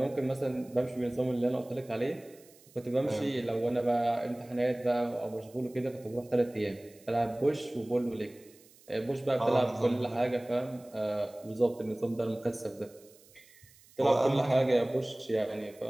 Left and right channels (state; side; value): noise; right; hiss, 26 dB below the sound